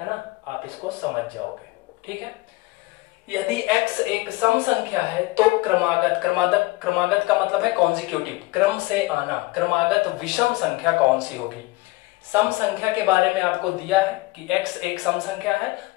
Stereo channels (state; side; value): quieter; right; 21.5 dB